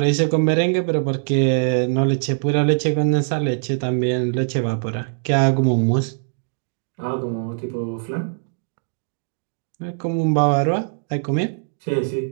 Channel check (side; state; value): left; silent; digital silence